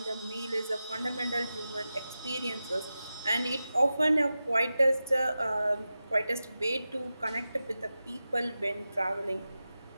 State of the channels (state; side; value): inverted; both; correlation -0.93